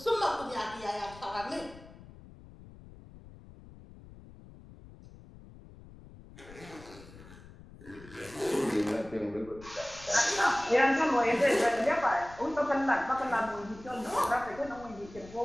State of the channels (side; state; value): left; noise; rumble, 19 dB below the sound